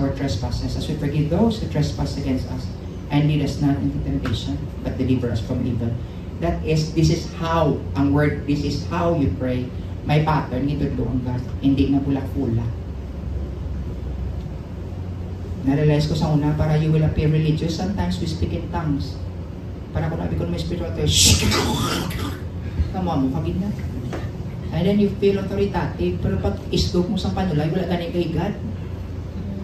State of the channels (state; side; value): identical; both; correlation 1.00